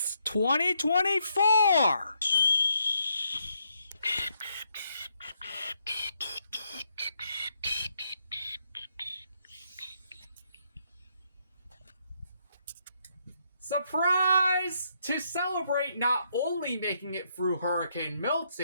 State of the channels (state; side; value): inverted; both; correlation -0.76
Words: 2024! Surprise! To celebrate not only making it through Hurricane